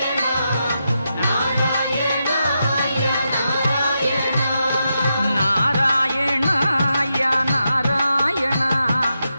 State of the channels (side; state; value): both; inverted; correlation -0.86